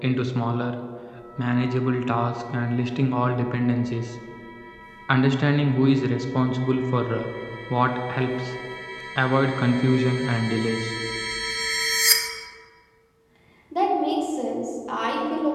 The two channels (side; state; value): both; identical; correlation 1.00